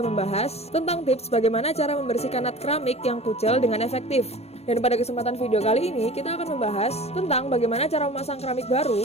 membahas tentang tips bagaimana cara membersihkan nut keramik yang kucel dengan efektif. Dan pada kesempatan video kali ini kita akan membahas tentang bagaimana cara memasang keramik baru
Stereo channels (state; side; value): late; right; 0.30 ms